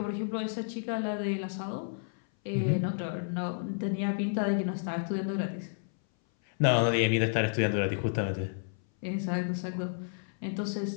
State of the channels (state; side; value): silent; right; 57 dB below the other